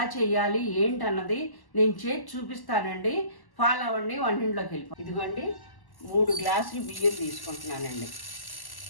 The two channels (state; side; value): late; right; 1.1 ms